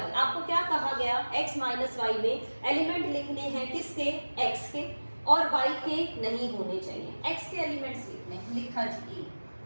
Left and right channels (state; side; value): inverted; both; correlation -1.00